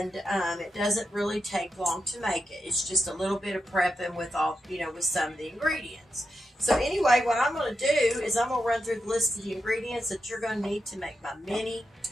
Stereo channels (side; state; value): both; normal; correlation 0.87